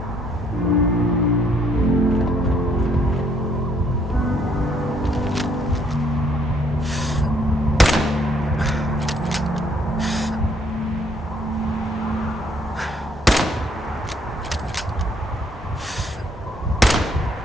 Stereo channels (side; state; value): both; normal; correlation 0.67